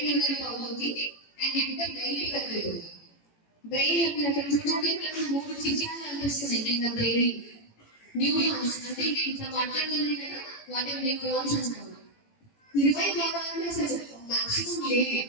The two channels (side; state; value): right; late; 18 ms